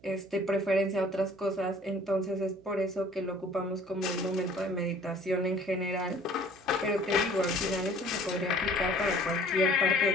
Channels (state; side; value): noise; right; hum, 27 dB below the sound